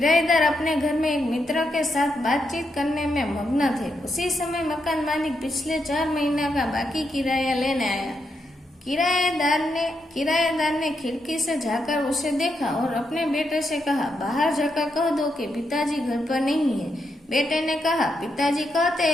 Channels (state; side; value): normal; both; correlation 0.82